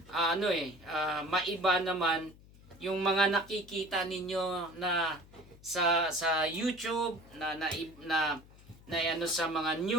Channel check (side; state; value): left; noise; hum, 23 dB below the sound